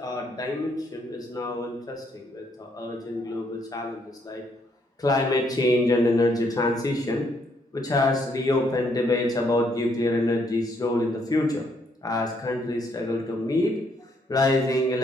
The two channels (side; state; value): both; normal; correlation 0.71